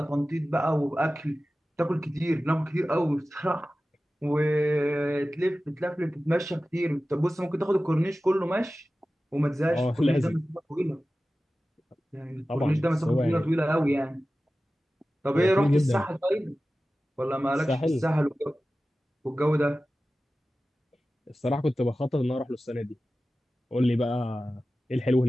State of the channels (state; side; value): normal; both; correlation 0.95